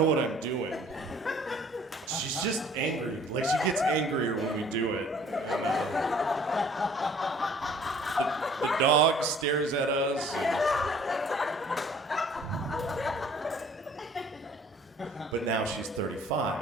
what I'm doing. She's just angry. Like, she gets angrier when we do it. And, the dog stares at us. But now she's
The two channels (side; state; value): both; normal; correlation 0.54